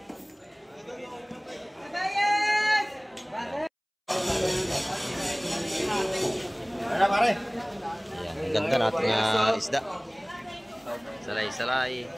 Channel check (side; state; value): both; identical; correlation 1.00